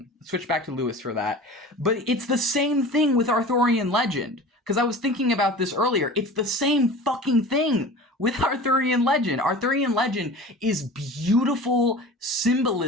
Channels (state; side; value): normal; both; correlation 0.38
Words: Switch back to Lewis for that. But it's the same thing with Arthurian legend. Because I was thinking about this earlier. It's the same fucking thing with Arthurian legend. Arthurian legend is beautiful